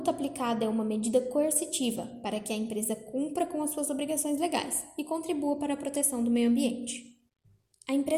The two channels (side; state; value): both; identical; correlation 1.00